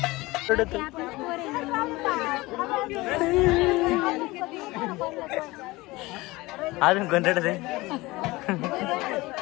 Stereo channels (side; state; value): right; quieter; 21.1 dB